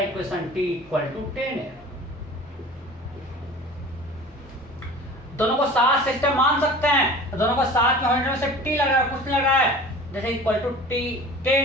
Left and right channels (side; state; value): both; normal; correlation 0.41